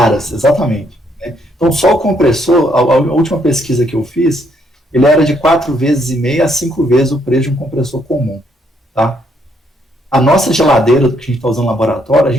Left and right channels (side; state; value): both; normal; correlation 0.72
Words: exatamente. Né? Então só o compressor, a última pesquisa que eu fiz, ele era de 4,5 vezes a 5 vezes o preço de um compressor comum, tá? A nossa geladeira que a gente está usando no laboratório, a